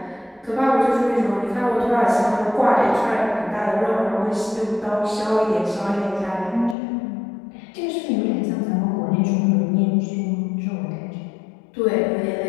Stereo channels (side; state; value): right; drops out; at 6.8 s